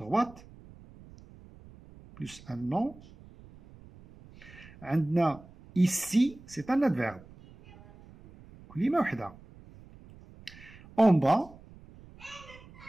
plus un nom. Ici, c'est un adverbe. En bas,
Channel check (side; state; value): right; noise; rumble, 22 dB below the sound